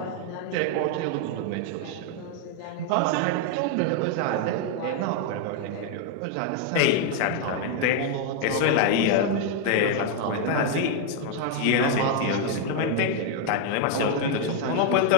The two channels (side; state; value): both; different; correlation 0.01